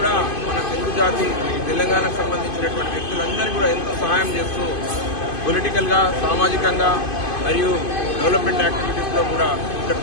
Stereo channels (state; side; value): late; right; 2.5 ms